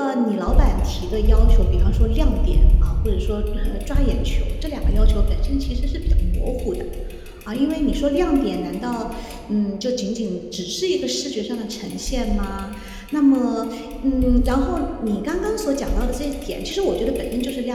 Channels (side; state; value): both; identical; correlation 1.00